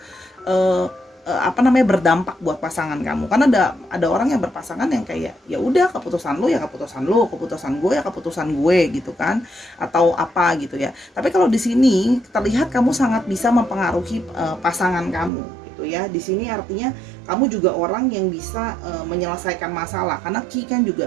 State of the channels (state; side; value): drops out; left; at 15.3 s